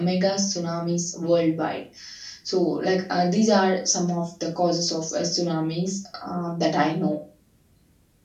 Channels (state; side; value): identical; both; correlation 1.00